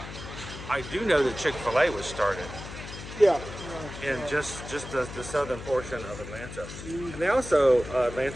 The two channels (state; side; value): noise; left; hum, 11 dB below the sound